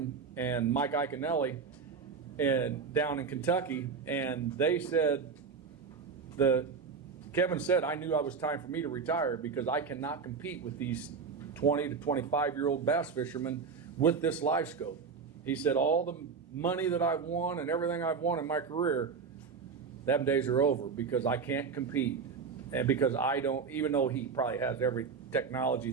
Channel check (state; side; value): quieter; left; 5.5 dB